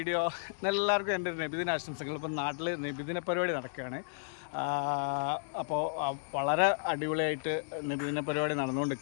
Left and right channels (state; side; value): silent; right; digital silence